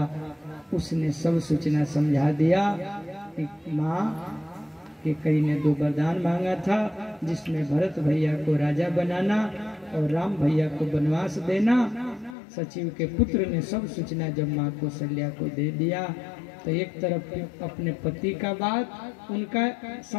उसने सब सूचना समझा दिया कि माँ केकई ने 2 वरदान मांगा था, जिसमें भरत भैया को राजा बनाना और राम भैया को वनवास देना। सचिव के पुत्र ने सब सूचना जब माँ कौशल्या को दे दिया तो एक तरफ अपने पति का बात, उनका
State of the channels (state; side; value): drops out; right; at 12.4 s